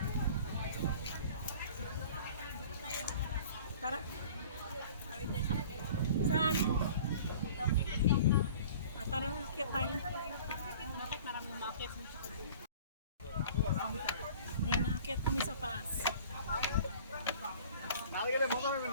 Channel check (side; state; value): both; inverted; correlation -0.46